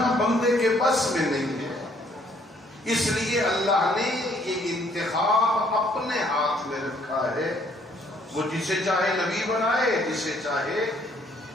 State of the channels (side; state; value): both; normal; correlation 0.64